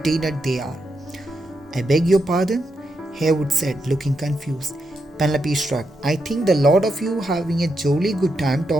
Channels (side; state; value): both; normal; correlation 0.83